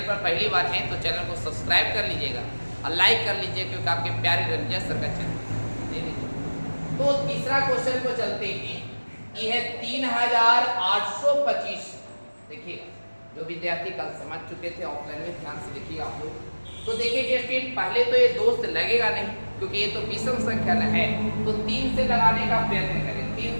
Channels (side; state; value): both; inverted; correlation -1.00